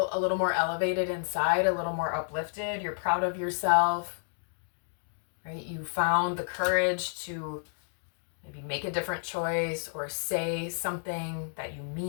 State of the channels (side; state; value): right; silent; digital silence